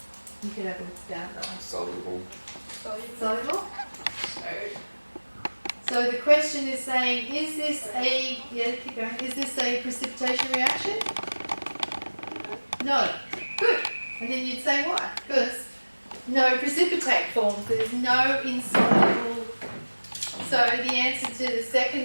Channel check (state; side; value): inverted; both; correlation -1.00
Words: You could have it down though. Soluble. Soluble? So the question is saying, is this a, yeah, keep going, is this a precipitation reaction? No. Good. And then you'd say why? Because no precipitate forms. There's no insoluble. So the answer to the